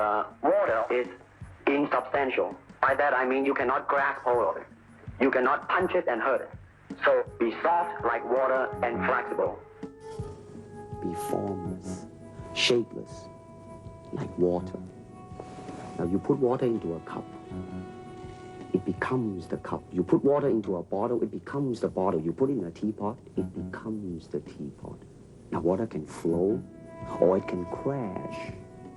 water is insubstantial. By that I mean you cannot grasp hold of it. You cannot punch it and hurt it. So be soft like water and flexible. Be formless, shapeless, like water. Now you put water into a cup, it becomes the cup. You put water into a bottle, it becomes the bottle. You put it in a teapot, it becomes the teapot. Now water can flow or it can crash.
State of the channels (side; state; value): both; identical; correlation 1.00